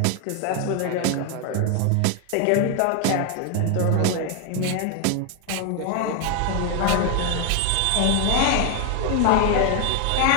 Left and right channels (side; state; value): both; different; correlation 0.01